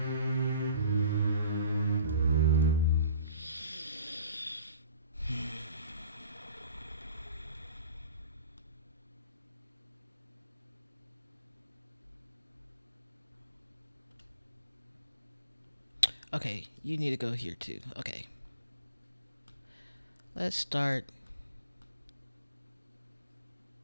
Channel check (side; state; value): both; inverted; correlation -0.50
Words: Okay, you need to go here too. Okay. Let's start